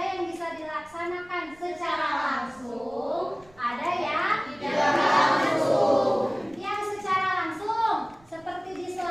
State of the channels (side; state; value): right; noise; rumble, 28 dB below the sound